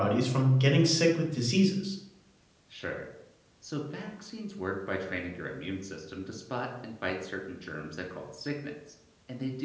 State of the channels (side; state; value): both; identical; correlation 1.00